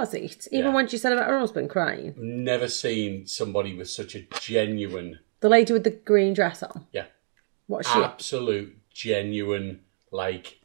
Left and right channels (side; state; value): left; silent; digital silence